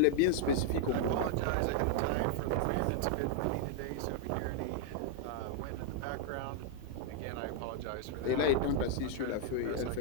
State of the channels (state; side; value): different; both; correlation 0.00